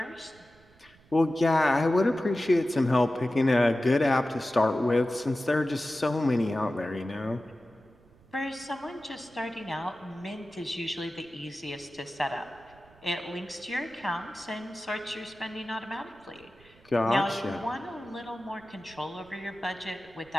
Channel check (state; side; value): noise; right; rumble, 28 dB below the sound